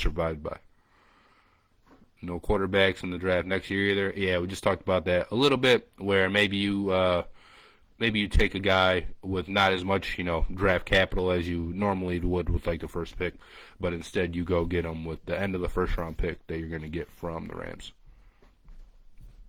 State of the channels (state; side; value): identical; both; correlation 1.00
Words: by. No quarterbacks in the draft next year either. Yeah, we just talked about that a little bit, where maybe you take a guy with not as much, draft capital as you normally would with like the first pick, but instead you go get him with the end of the first round pick that you're going to get from the Rams.